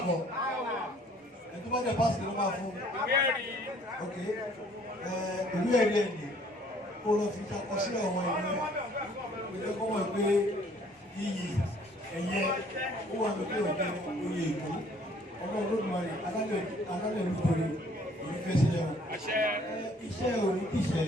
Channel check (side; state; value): both; normal; correlation 0.59